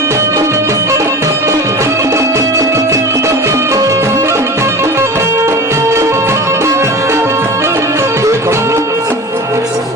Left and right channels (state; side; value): normal; both; correlation 0.33